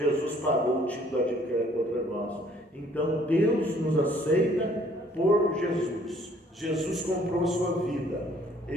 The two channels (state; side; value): normal; both; correlation 0.60